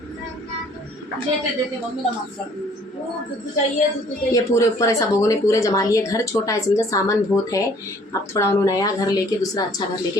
देते मम्मी नमाज पढ़। ये पूरे ऊपर ऐसा लोगों ने पूरे जमा लिए। घर छोटा है समझा, सामान बहुत है। अब थोड़ा उन्होंने नया घर लेके, दूसरा अच्छा घर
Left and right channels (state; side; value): normal; both; correlation 0.57